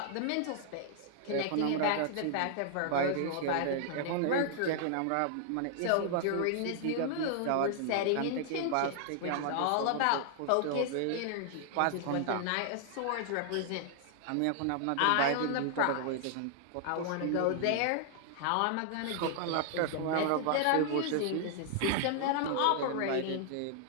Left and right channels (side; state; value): both; different; correlation -0.01